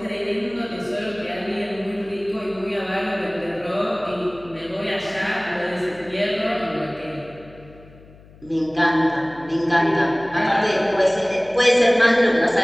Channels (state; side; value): noise; left; hum, 23 dB below the sound